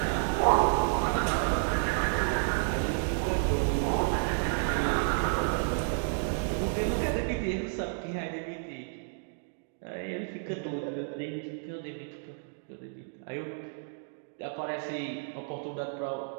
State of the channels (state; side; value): silent; left; digital silence